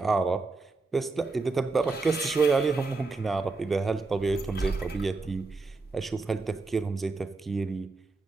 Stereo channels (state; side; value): quieter; left; 3.7 dB